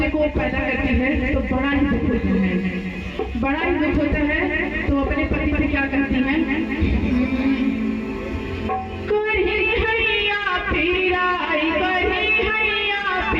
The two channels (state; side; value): identical; both; correlation 1.00